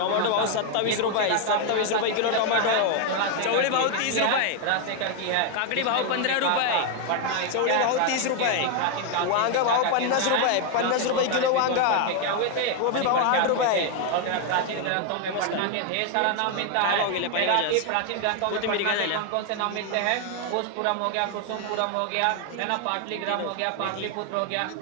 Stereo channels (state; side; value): different; both; correlation 0.01